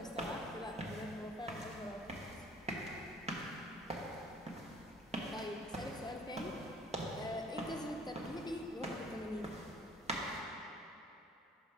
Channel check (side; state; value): both; normal; correlation 0.55